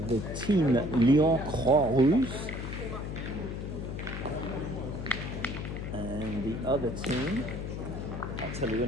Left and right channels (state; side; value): noise; left; hum, 6 dB below the sound